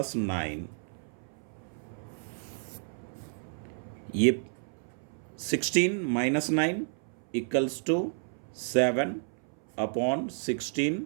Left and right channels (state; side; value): silent; left; 57 dB below the other